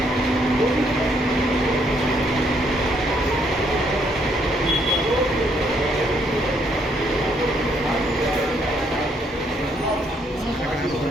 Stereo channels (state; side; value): normal; both; correlation 0.71